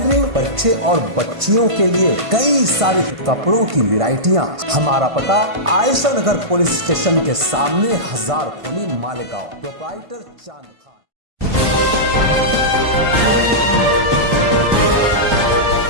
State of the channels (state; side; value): late; left; 1.5 ms